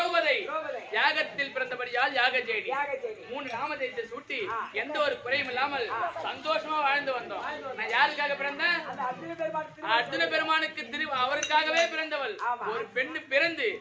யாகத்தில் பிறந்தபடியால் யாகஜேடி. 3 நாமதேயத்தை சூட்டி எந்த ஒரு குறையும் இல்லாமல் சந்தோஷமா வாழ்ந்து வந்தோம். நான் யாருக்காக பிறந்தேன்? அர்ஜுன பெருமானுக்கு அவருக்காகவே பிறந்தவள். ஒரு பெண்ணு பிறந்து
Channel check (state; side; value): identical; both; correlation 1.00